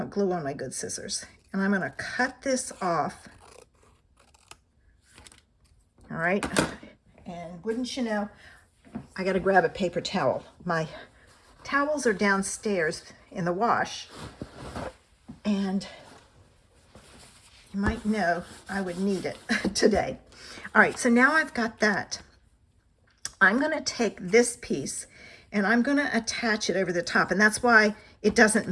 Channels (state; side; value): identical; both; correlation 1.00